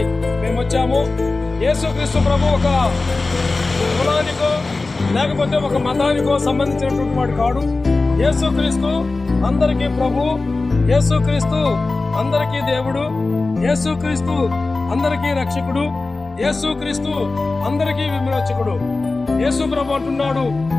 మేము వచ్చాము. యేసుక్రీస్తు ప్రభు ఒక కులానికో లేకపోతే ఒక మతానికో సంబంధించినటువంటి వాడు కాడు. యేసుక్రీస్తు అందరికీ ప్రభు, యేసుక్రీస్తు అందరికీ దేవుడు, యేసుక్రీస్తు అందరికీ రక్షకుడు, యేసుక్రీస్తు అందరికీ విమోచకుడు. యేసు ప్రభు అంటున్నాడు,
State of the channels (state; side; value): quieter; right; 3.5 dB